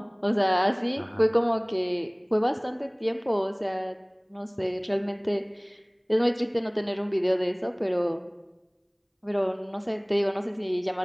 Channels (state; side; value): identical; both; correlation 1.00